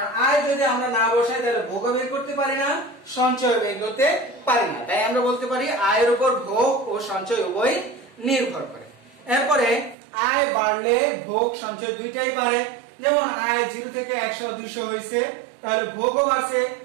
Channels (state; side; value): drops out; left; at 10.0 s